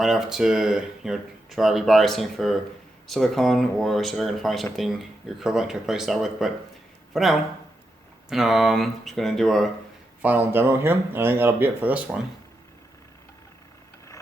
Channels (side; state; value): both; normal; correlation 0.85